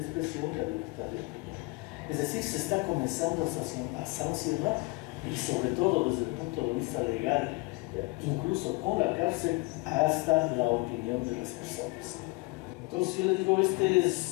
la libertad de opinión. Es decir, se está comenzando a sancionar y sobre todo desde el punto de vista legal, incluso con la cárcel, hasta la opinión de las personas. Entonces yo le digo,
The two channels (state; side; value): quieter; right; 25.6 dB